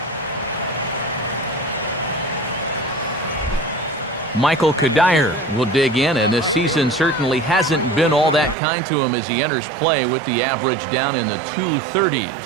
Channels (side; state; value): left; drops out; at 8.6 s